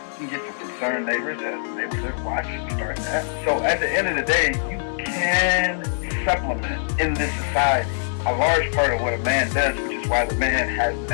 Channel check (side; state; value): right; silent; digital silence